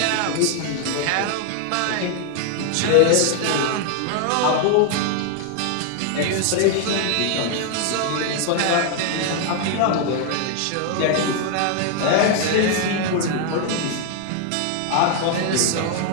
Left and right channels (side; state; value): both; different; correlation 0.00